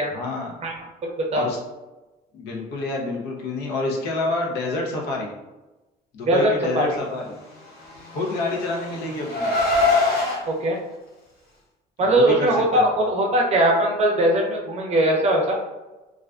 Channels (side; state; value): both; normal; correlation 0.30